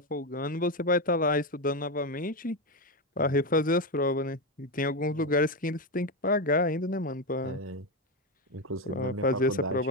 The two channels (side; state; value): both; normal; correlation 0.11